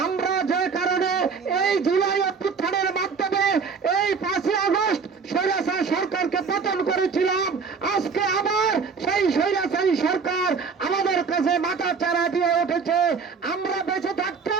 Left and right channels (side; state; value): left; quieter; 5.4 dB